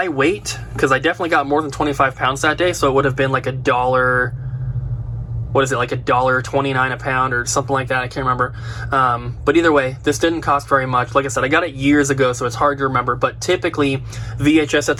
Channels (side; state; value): both; identical; correlation 1.00